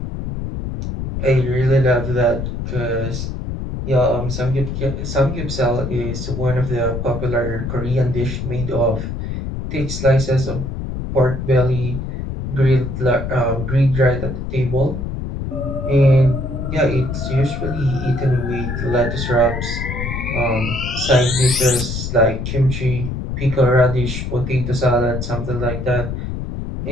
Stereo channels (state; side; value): noise; left; rumble, 5 dB below the sound